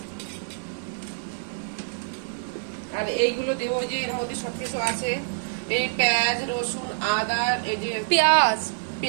আর এইগুলো দেবো যে এর মধ্যে সবকিছু আছে, এই পেঁয়াজ রসুন আদা, এই যে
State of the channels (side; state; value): left; silent; digital silence